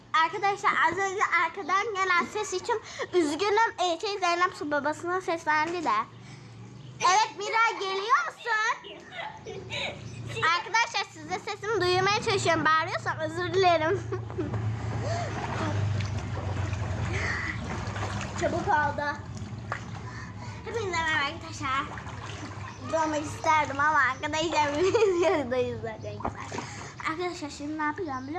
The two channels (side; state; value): both; identical; correlation 1.00